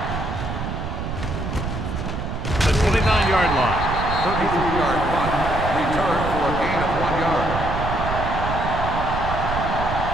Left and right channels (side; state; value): right; noise; rumble, 4 dB below the sound